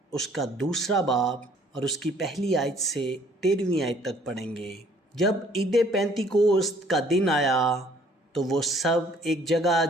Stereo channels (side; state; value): both; normal; correlation 0.59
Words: اس کا 2 باب اور اس کی پہلی آیت سے 13ویں آیت تک پڑھیں گے۔ جب عید پینتیکوست کا دن آیا تو وہ سب ایک جگہ